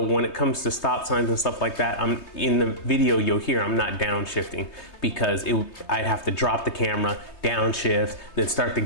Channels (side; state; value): right; late; 3.2 ms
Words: when it comes to stop signs and stuff like that, in the video you'll hear I'm not downshifting because I'd have to drop the camera, downshift, then start the